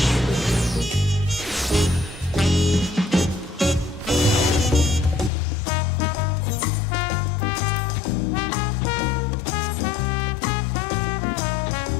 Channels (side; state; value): right; drops out; at 5.3 s